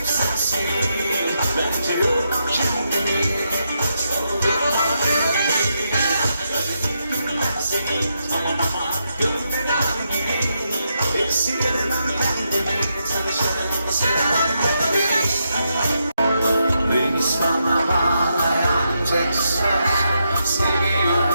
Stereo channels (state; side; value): inverted; both; correlation -0.82